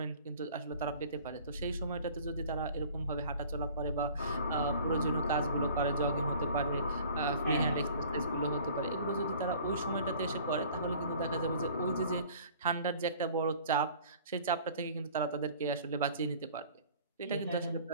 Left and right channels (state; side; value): inverted; both; correlation -0.48